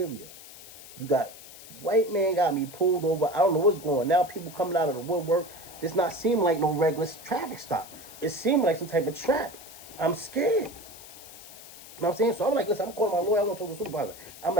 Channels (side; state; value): left; noise; hiss, 17 dB below the sound